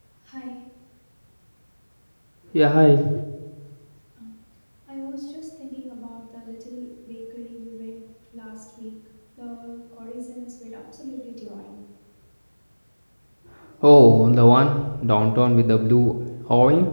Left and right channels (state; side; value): inverted; both; correlation -1.00